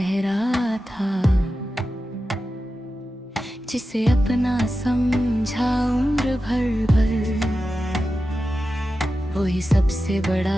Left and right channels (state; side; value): normal; both; correlation 0.92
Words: था। जिसे अपना समझा उम्र भर वही सबसे